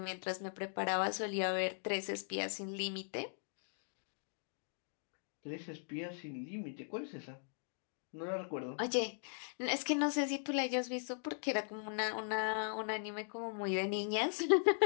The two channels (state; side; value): silent; right; digital silence